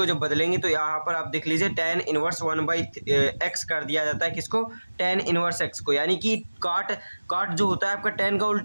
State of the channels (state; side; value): inverted; both; correlation -1.00